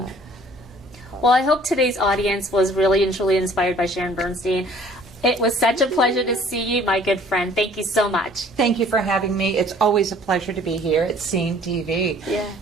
Well, I hope today's audience was really and truly inspired by Sharon Burstein. It was such a pleasure to see you, my good friend. Thank you so much. Thank you for having me. It's always a pleasure to be here at Scene TV. Yeah.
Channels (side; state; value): both; normal; correlation 0.54